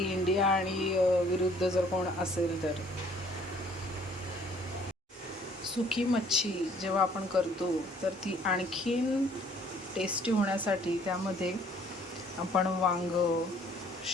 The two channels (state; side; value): normal; both; correlation 0.58